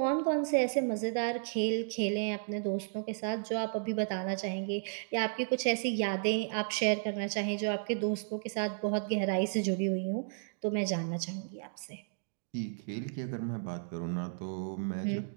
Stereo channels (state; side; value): silent; left; digital silence